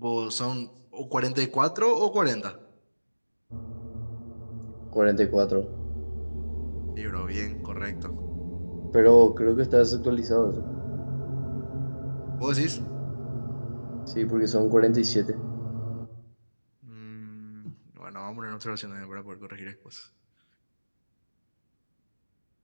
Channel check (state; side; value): inverted; both; correlation -1.00